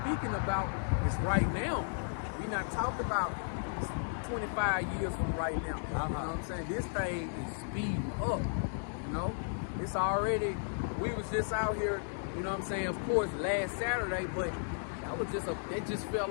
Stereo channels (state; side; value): silent; right; digital silence